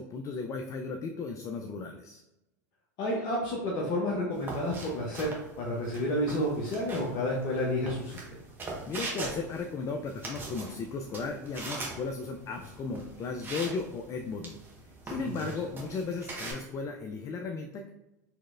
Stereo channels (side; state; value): both; normal; correlation 0.19